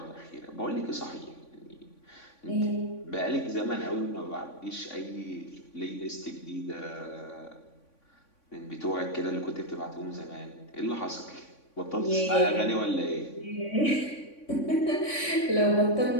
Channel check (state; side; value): late; right; 3.5 ms